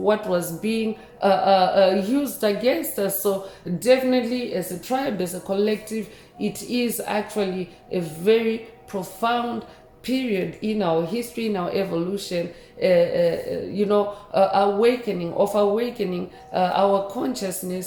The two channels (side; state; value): both; identical; correlation 1.00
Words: was being used against us. So, definitely, as a tribe, as a collective, it is actually a very profound period in our history, in our evolution, awakening our